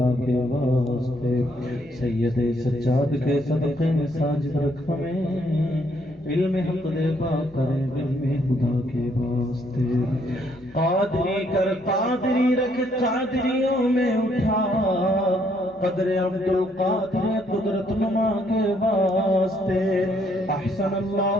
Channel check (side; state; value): both; normal; correlation 0.70